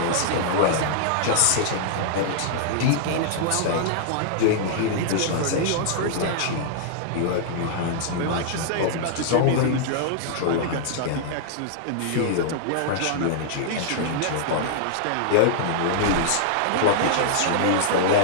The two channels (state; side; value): different; both; correlation -0.01